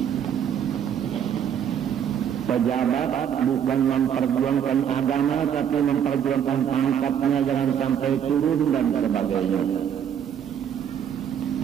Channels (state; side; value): quieter; left; 8.8 dB